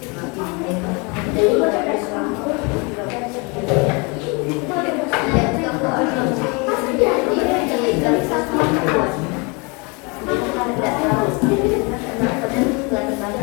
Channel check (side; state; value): right; quieter; 30.0 dB